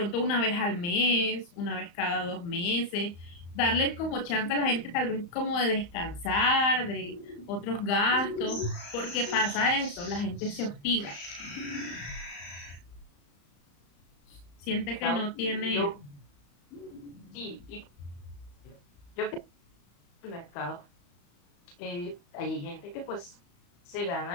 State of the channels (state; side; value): late; right; 35 ms